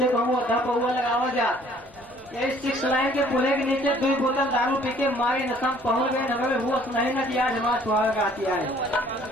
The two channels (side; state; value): both; normal; correlation 0.57